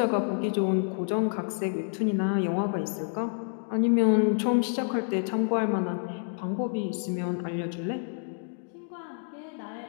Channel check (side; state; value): right; silent; 59 dB below the other